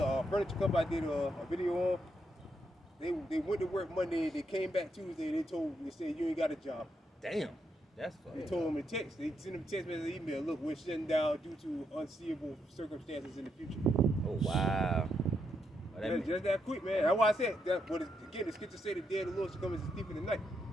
furniture company. I did a video on. They went to work Monday. They came back Tuesday. They said you ain't got a job. Damn. That's They fucked. told them a text. They sent them a text message, email. Look, we're shutting down due to unseeable circumstances in the future. Oh wow. Well, that mean- Just that quick, man. That's why I said that. But again, the scripture say the day of the Lord shall come as a thief in the night.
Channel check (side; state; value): both; normal; correlation 0.80